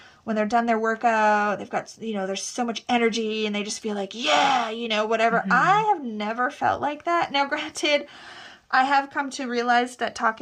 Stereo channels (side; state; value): both; identical; correlation 1.00